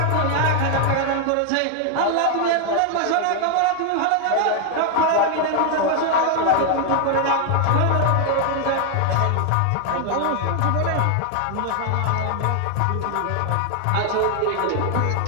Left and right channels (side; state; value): both; different; correlation 0.00